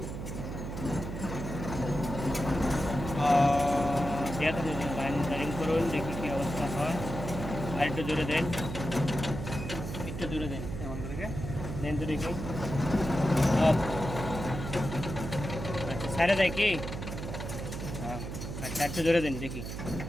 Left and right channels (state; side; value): noise; right; hum, 6 dB below the sound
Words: লাইন করুন, দেখি কি অবস্থা হয়। আর একটু জোরে দেন, একটু জোরে দেন, এমন করে দেন তো দেখি। আচ্ছা, সাইডে দেয় কি? আচ্ছা, একটু জোরে দেন দেখি।